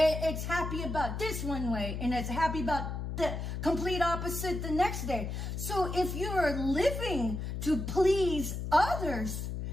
happy about this one way, and it's happy about the complete opposite the next day. So if you're living to please others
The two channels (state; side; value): noise; left; hum, 4 dB below the sound